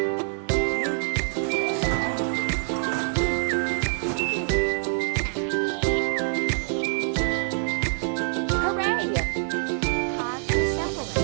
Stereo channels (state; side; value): silent; left; digital silence